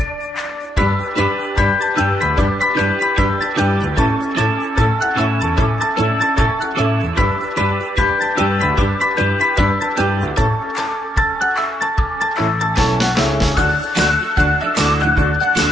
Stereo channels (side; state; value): both; normal; correlation 0.80